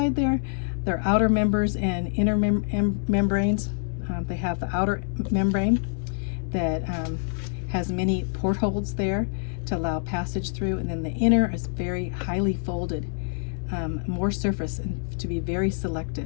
there. They're outer members and inner membranes. They have the outer membrane that has many portholes there to allow passage through, and then the inner is very highly folded, more surface, and to be very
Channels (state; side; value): silent; right; digital silence